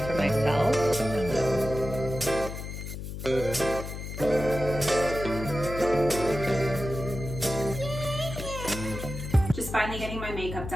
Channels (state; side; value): noise; left; hum, 8 dB below the sound